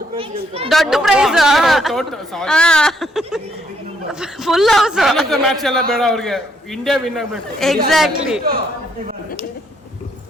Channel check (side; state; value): both; normal; correlation 0.71